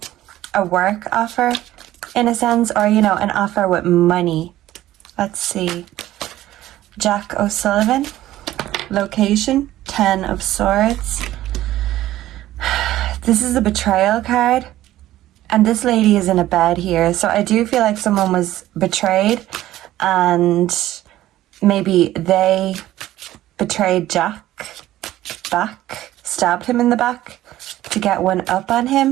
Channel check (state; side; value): quieter; left; 14.5 dB